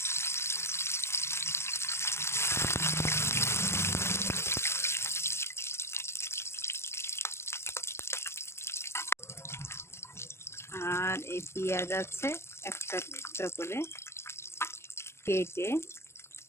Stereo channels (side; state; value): right; late; 0.13 ms